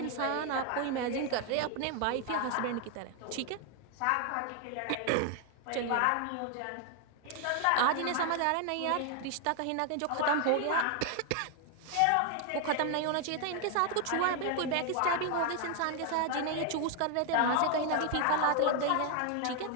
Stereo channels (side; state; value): both; different; correlation 0.00